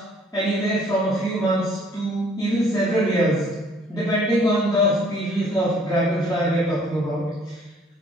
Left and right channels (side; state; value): both; normal; correlation 0.59